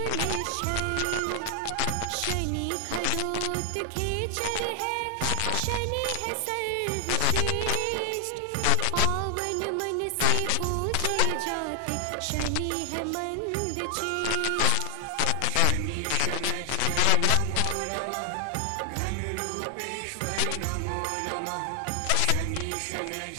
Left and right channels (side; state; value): both; different; correlation 0.00